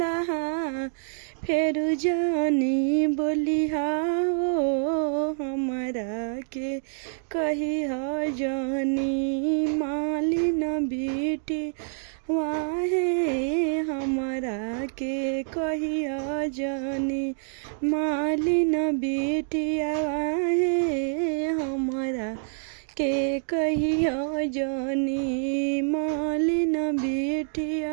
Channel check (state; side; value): silent; left; digital silence